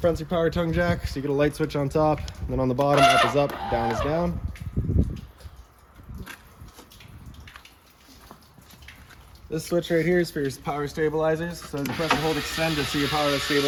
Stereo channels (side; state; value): both; identical; correlation 1.00